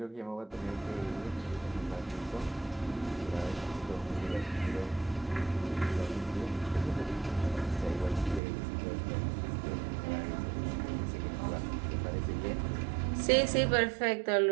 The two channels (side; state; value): left; drops out; at 8.4 s